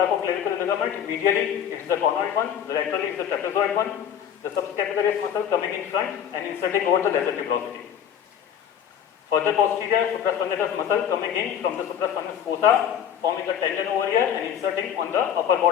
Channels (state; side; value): quieter; right; 9.0 dB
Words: ligament. Medially it is the conoid one, laterally it is the trapezoid one. The subscapularis muscle coming in front and inserting over the lesser tuberosity. Further posterior, supraspinatus muscle coming in from the supraspinatus fossa, forming a tendon over here and inserting on the upper